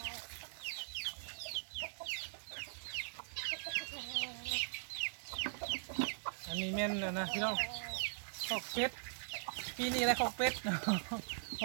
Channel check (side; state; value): left; silent; digital silence